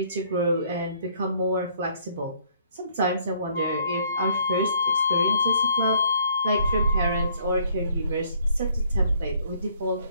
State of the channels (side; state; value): both; inverted; correlation -0.62